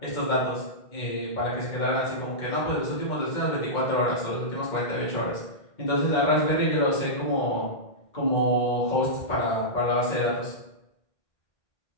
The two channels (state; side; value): late; right; 2.1 ms